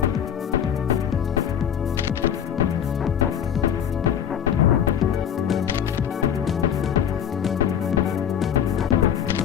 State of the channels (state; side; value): quieter; right; 8.9 dB